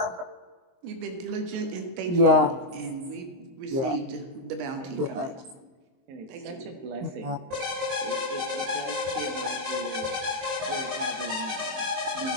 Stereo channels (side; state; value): left; late; 23 ms